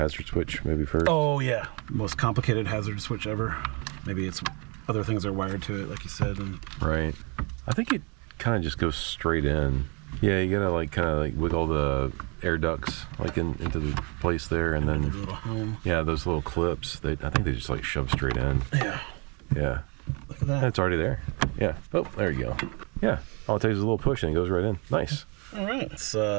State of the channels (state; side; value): quieter; left; 32.8 dB